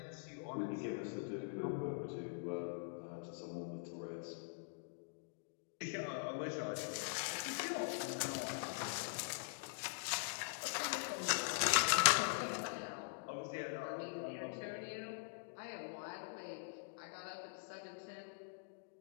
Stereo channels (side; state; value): right; silent; digital silence